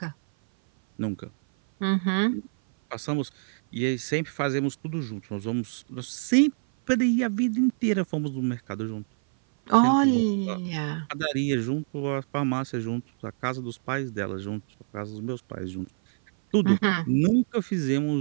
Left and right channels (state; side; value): silent; left; 57 dB below the other